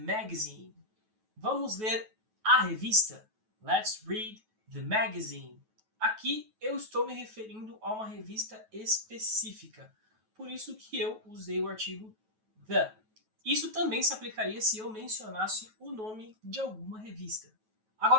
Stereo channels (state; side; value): late; left; 9.3 ms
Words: vamos ler a revista. Let's read the magazine. Aqui eu estou me referindo a uma revista específica, por isso que eu usei o artigo the. Isso também se aplicaria se eu mencionasse o nome de alguma revista.